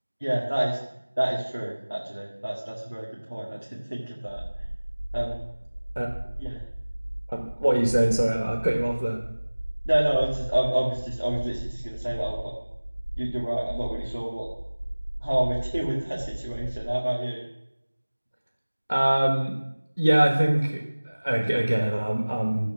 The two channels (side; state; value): both; inverted; correlation -1.00